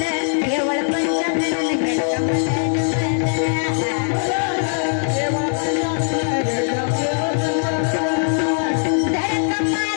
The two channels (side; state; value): right; silent; digital silence